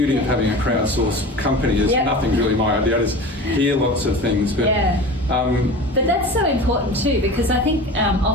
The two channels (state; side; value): normal; both; correlation 0.34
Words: of having a crowdsourced company is nothing's really my idea. I just hear lots of things, but but that's so important too, because I think